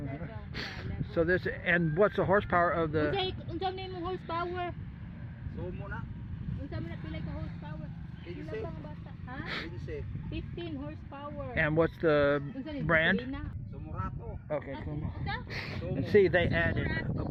So this, and what's the horsepower of the? Unsa man mo horsepower? Unsa man pila ka horsepower? Ha? 15 horsepower. And what's the brand? Okay, cool. And see, they added a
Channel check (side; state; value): both; identical; correlation 1.00